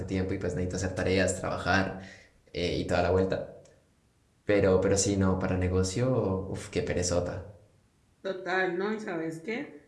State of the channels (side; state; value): both; identical; correlation 1.00